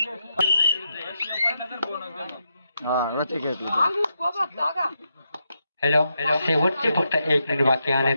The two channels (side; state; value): both; inverted; correlation -0.84